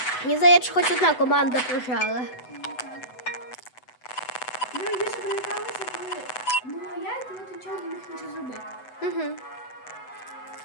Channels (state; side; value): late; right; 8.0 ms